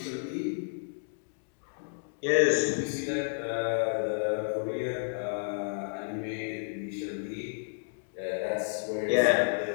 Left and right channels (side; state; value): right; silent; digital silence